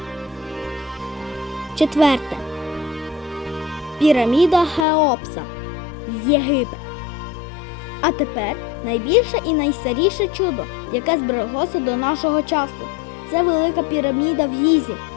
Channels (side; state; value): right; drops out; at 4.9 s